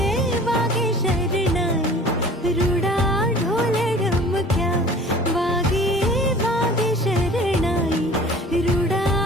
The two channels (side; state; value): both; normal; correlation 0.46